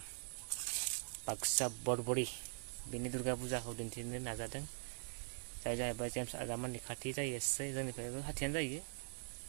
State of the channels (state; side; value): silent; left; digital silence